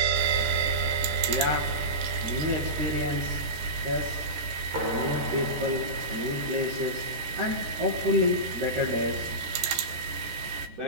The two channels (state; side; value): late; left; 14 ms